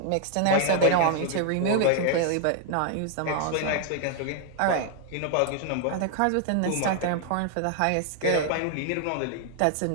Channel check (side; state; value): both; different; correlation 0.00